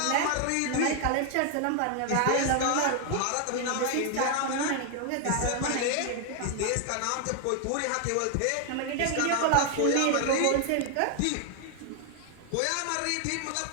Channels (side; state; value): both; different; correlation 0.00